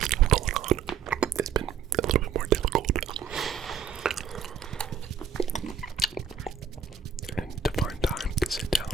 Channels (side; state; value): left; quieter; 7.1 dB